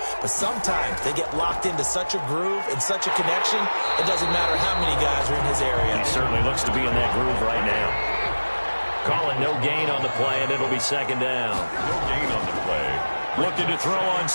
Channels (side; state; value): both; inverted; correlation -1.00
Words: But sometimes they get locked into such a groove and such a connection, it doesn't matter how many guys are in his area. He certainly looks to be in that groove right now. Calling no gain on the play, and it'll be 2nd down. No gain on the play. Looking to throw on